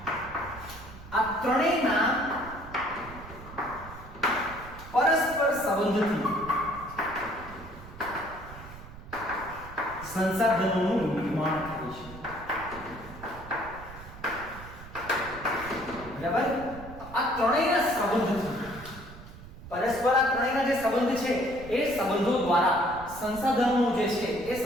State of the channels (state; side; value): noise; right; rumble, 15 dB below the sound